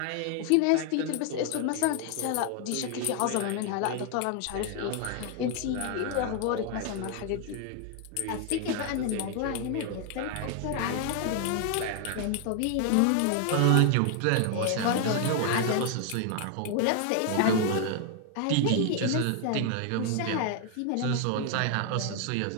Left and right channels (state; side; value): different; both; correlation 0.00